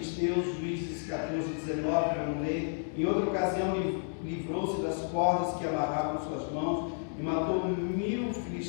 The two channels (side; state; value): right; silent; digital silence